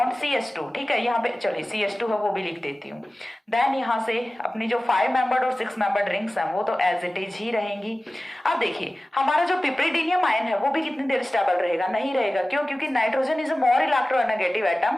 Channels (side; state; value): both; normal; correlation 0.96